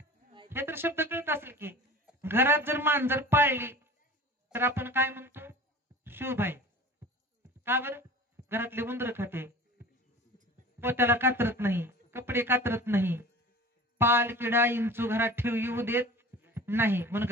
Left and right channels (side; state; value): both; normal; correlation 0.39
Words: हे तर शब्द कळत असेल की. घरात जर मांजर पाळली तर आपण काय म्हणतो? शुभ आहे. का बरं? घरातले उंदर खाते, पोत्याला कातरत नाही, कपडे कातरत नाही, पाल किडा इंचू घरात ठेव येऊ देत नाही. म्हणून